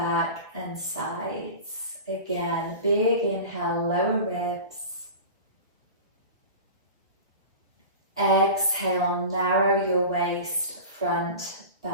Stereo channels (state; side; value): inverted; both; correlation -0.32